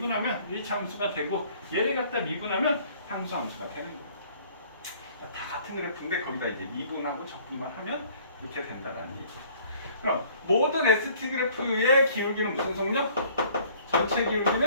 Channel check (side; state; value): both; inverted; correlation -0.56